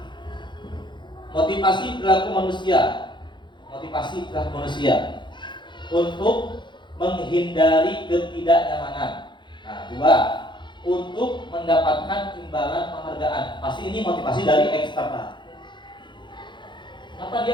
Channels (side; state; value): right; late; 0.23 ms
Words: Motivasi perilaku manusia untuk menghindari ketidaknyamanan. 2, untuk mendapatkan imbalan penghargaan. Pasti ini motivasi dari eksternal. Kenapa